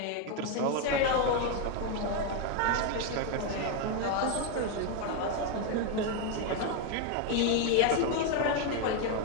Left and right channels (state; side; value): different; both; correlation 0.01